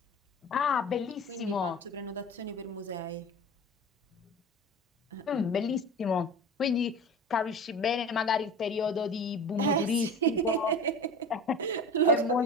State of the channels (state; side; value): normal; both; correlation 0.34